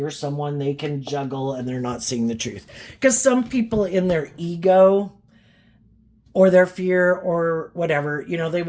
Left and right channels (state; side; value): identical; both; correlation 1.00